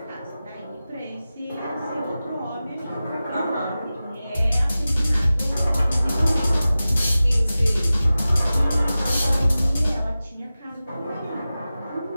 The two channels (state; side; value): inverted; both; correlation -0.95